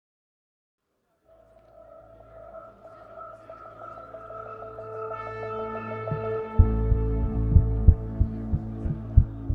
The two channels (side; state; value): both; identical; correlation 1.00